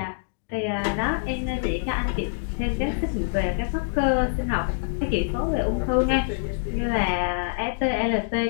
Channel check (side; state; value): right; silent; digital silence